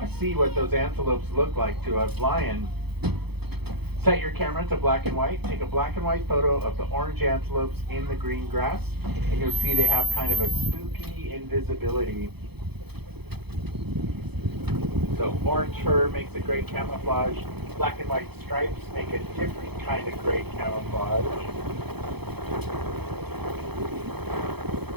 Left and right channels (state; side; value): late; left; 0.98 ms